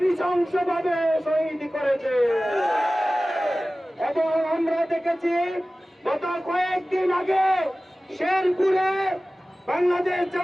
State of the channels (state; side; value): normal; both; correlation 0.97